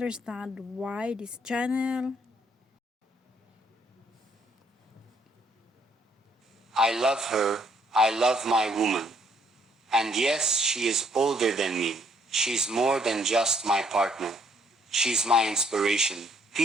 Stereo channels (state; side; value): normal; both; correlation 0.67